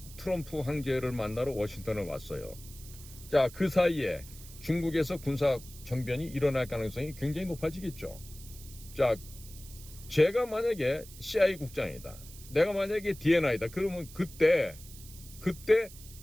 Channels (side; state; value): right; noise; hiss, 17 dB below the sound